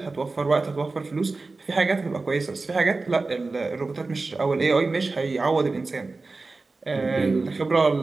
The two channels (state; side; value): quieter; left; 3.6 dB